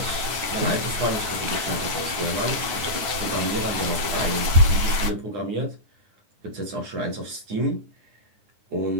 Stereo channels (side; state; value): left; late; 9.3 ms